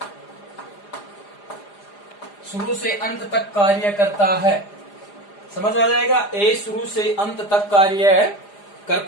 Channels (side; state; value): right; late; 4.9 ms